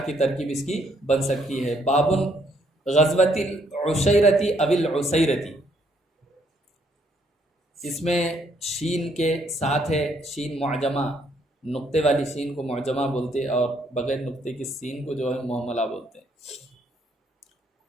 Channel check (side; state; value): both; normal; correlation 0.70